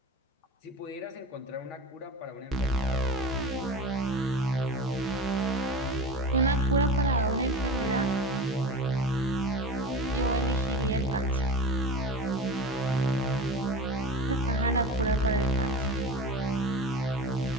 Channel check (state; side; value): normal; both; correlation 0.31